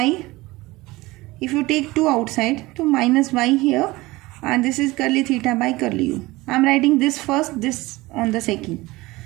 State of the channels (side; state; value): left; quieter; 20.5 dB